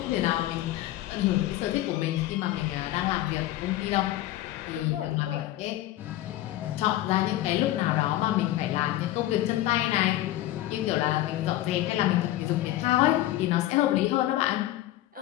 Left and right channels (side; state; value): right; quieter; 15.0 dB